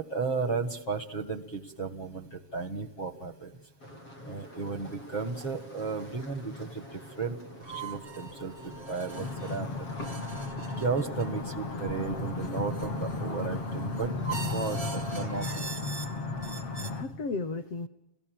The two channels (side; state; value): right; late; 7.4 ms